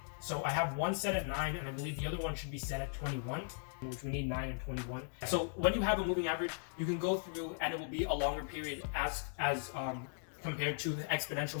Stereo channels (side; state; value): right; silent; digital silence